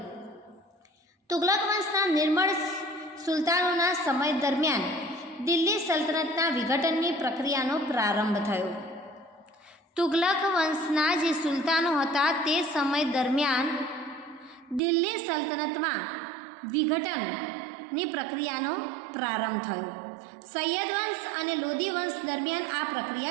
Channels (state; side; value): drops out; left; at 14.8 s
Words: તુગલક વંશના નિર્મળ સુલતાનોના સમય દરમિયાન દિલ્હી સલ્તનતના વિઘટનની પ્રક્રિયાનો પ્રારંભ થયો। તુગલક વંશના જે સુલતાનો હતા તે સમય દરમિયાન દિલ્હી સલ્તનતમાં વિઘટનની પ્રક્રિયાનો પ્રારંભ થયો। સૈયદ વંશ અને લોધી વંશ દરમિયાન આ